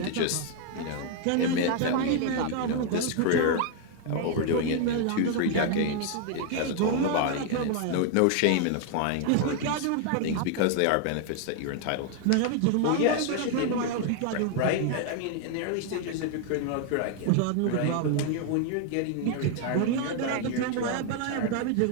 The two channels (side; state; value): both; different; correlation 0.00